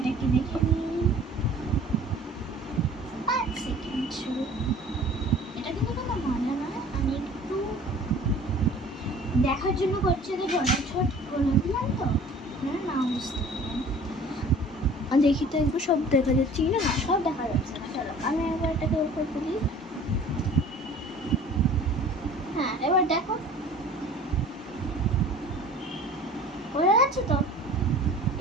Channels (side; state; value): both; normal; correlation 0.47